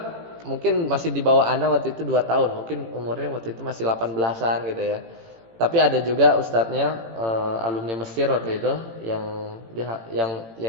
mungkin masih di bawah ana waktu itu 2 tahun, mungkin umurnya waktu itu masih 18-an gitu ya. Tapi ada juga ustadznya alumni Mesir waktu itu yang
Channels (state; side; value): late; left; 18 ms